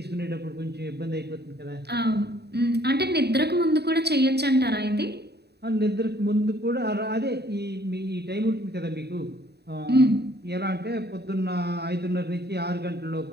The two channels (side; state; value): left; late; 0.48 ms